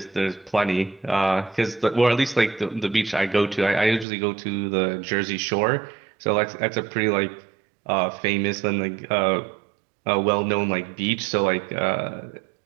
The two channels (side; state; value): left; drops out; at 4.0 s